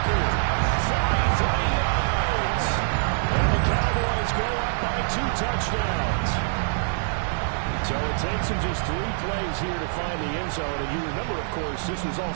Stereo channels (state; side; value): silent; left; 62 dB below the other